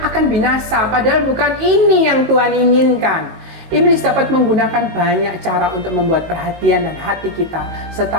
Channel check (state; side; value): late; left; 19 ms